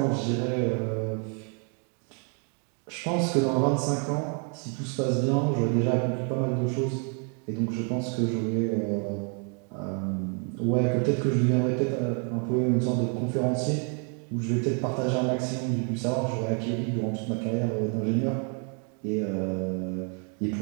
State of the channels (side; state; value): left; quieter; 39.9 dB